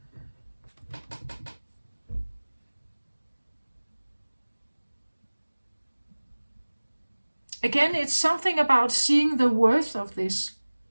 Again, it's something about seeing the worth of this.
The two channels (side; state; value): both; inverted; correlation -1.00